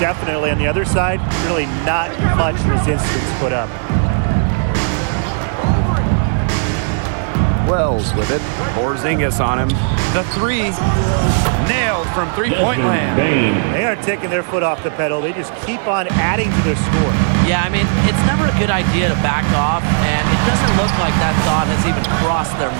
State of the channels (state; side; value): silent; left; digital silence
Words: on the other side, really not much resistance put up. Wells with it. Porzingis on him. The three. Nailed from three-point land. They aren't taking their foot off the pedal. They just keep on adding to their score. Yeah, I mean, it's never a good idea to back off, and it doesn't look like that thought has even crossed their